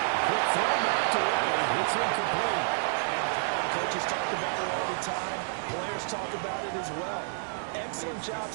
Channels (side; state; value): left; silent; digital silence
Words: Quick throw knocked away. It's incomplete. Coaches talk about it all the time. Players talk about it as well. Excellent job